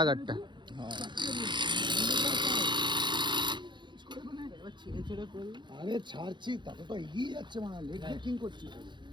गाड़ीटा আরে ছাড়ছি তাতে তো এগিয়ে যাচ্ছে মানে লেগ ব্রেকিং করছি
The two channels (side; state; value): left; late; 0.22 ms